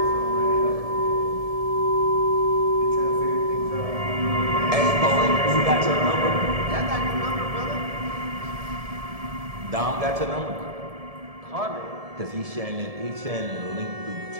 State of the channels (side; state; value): left; late; 1.7 ms